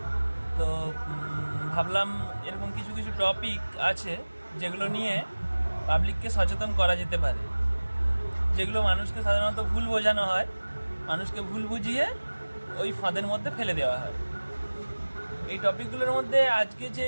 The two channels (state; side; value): inverted; both; correlation -1.00